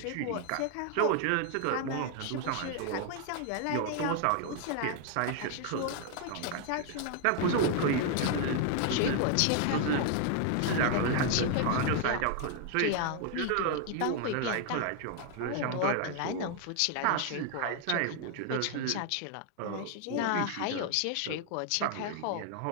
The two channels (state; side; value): different; both; correlation 0.00